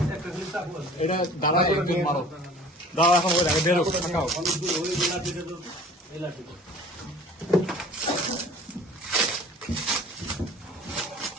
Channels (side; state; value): both; normal; correlation 0.46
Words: এটা দাঁড়া একজন মারো দাঁড়া এখন ওই বেরো থাকাও